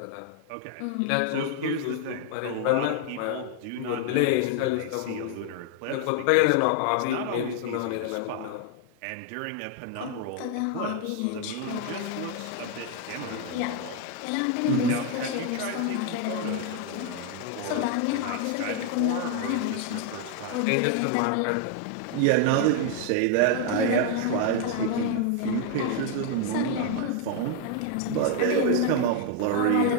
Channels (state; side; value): different; both; correlation 0.00